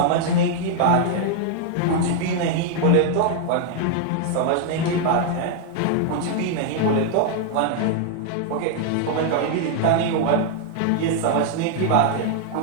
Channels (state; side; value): different; both; correlation 0.00